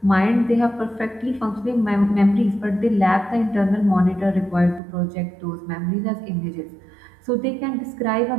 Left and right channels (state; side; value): drops out; left; at 4.8 s